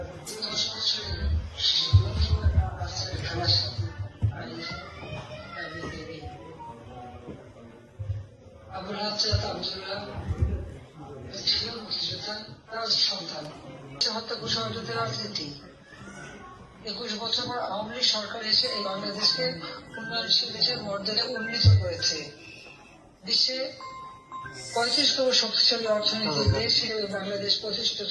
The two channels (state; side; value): identical; both; correlation 1.00